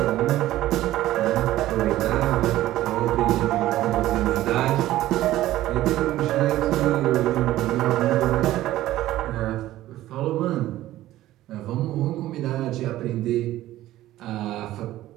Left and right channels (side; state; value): left; quieter; 14.9 dB